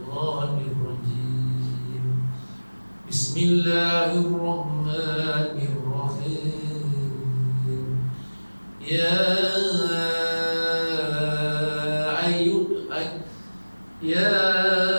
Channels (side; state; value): both; inverted; correlation -1.00